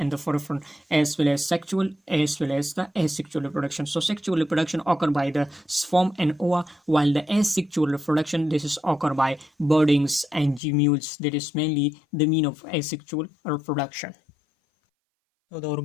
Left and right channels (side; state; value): right; drops out; at 10.6 s